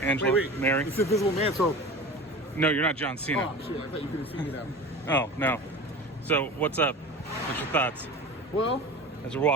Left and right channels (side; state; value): both; normal; correlation 0.34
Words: wait. Mary. It's Invisible Man, so... No, you're not John Cena. Oh, shit, I thought you could have seen me now. Oh, no. So, what's up? What's your thoughts Well, as we're